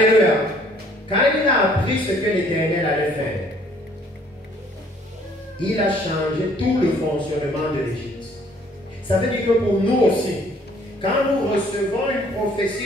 Quand il a appris ce que l'Éternel allait faire, il a changé tout le fonctionnement de l'Égypte. Ça veut dire que pour nous aussi, quand nous recevons une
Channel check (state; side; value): normal; both; correlation 0.60